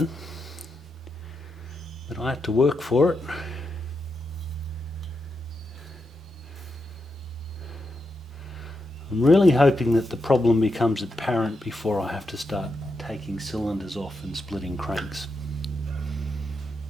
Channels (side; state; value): both; normal; correlation 0.85